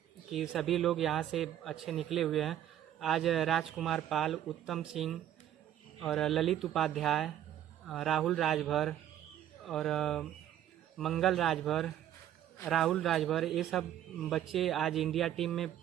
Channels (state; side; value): quieter; left; 11.3 dB